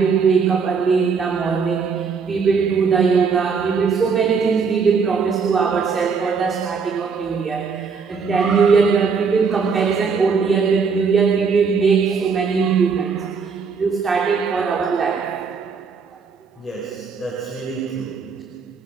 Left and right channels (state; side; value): quieter; left; 5.5 dB